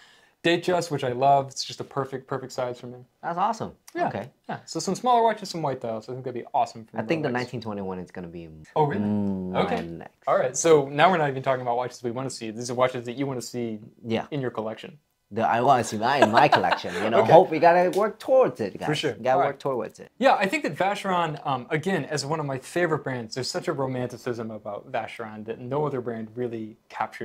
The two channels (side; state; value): both; identical; correlation 1.00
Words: Datejust, which I love. It's just a perfect size for me. That's awesome. Yeah. Okay. Yeah. So some smaller watches, some white dials. I think that'd be awesome for me. I think the 1921 is going to be. Oh, really? Okay. Next. All right. So now we're not even talking about watches we want to see. These are watches that you want to see in your collection. I want to see that in my collection. You know, hope we gotta work towards it, guys. For sure. Gotta work towards it. Yeah, I think that Vacheron, again, as one of my favorite brands, there's such a romanticism about Vacheron that no other brand really